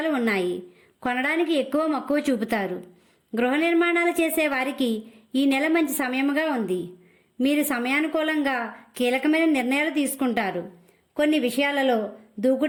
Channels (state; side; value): identical; both; correlation 1.00